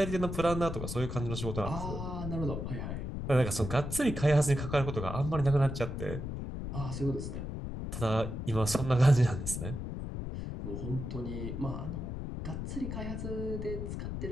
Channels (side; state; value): left; noise; rumble, 5 dB below the sound